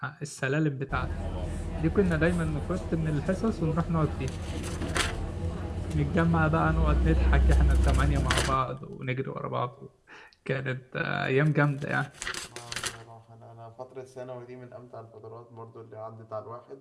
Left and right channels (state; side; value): identical; both; correlation 1.00